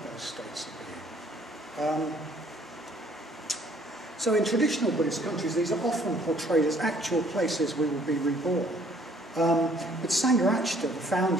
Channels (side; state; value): both; normal; correlation 0.60